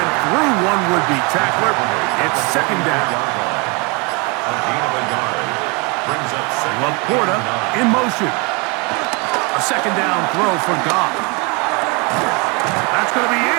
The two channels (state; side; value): quieter; left; 30.3 dB